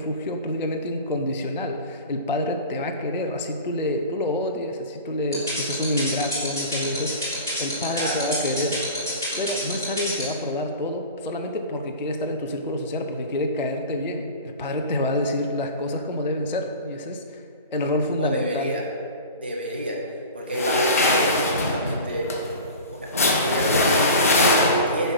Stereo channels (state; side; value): inverted; both; correlation -0.35